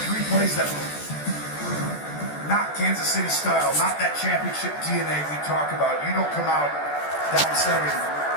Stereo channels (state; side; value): late; right; 14 ms